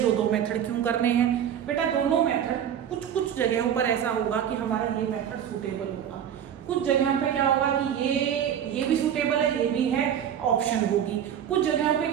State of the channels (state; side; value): quieter; left; 9.3 dB